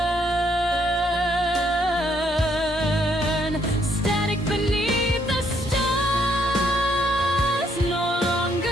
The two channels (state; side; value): normal; both; correlation 0.71